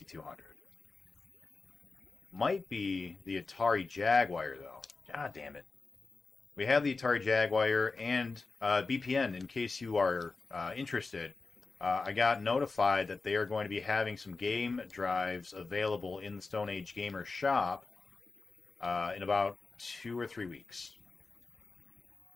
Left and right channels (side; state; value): right; quieter; 4.0 dB